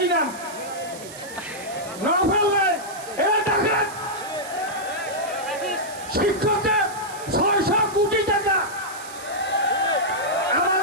নাম নভেল নাই। এরা ঢাকার শিক্ষকদের 600 কোটি টাকা,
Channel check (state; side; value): noise; right; hiss, 15 dB below the sound